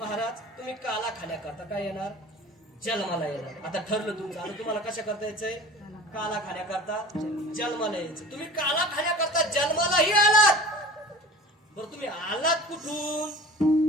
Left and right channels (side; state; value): both; normal; correlation 0.40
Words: तुम्ही काला खाण्याकरता काय येणार जन्माला येणार. आता ठरलं तुमचं. आता तुम्हाला कशा करता यायचंय काला खाण्याकरता जन्माला यायचं. तुम्ही काला खाण्याकरता जन्मालाही आलात. बरं तुम्ही आलात कुठून.